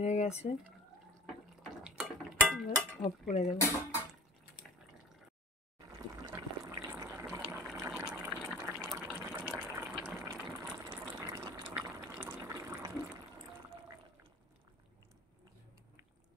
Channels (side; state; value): both; normal; correlation 0.41